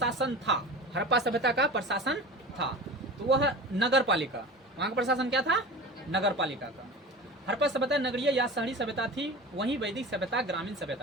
था, हड़प्पा सभ्यता का प्रशासन था तो वह नगर पालिका, वहां का प्रशासन क्या था? नगर पालिका का। हड़प्पा सभ्यता नगरीय या शहरी सभ्यता थी, वहीं वैदिक सभ्यता ग्रामीण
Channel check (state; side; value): normal; both; correlation 0.33